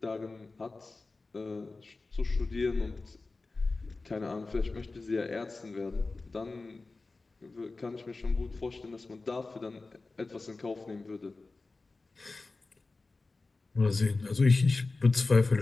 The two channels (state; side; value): quieter; right; 3.6 dB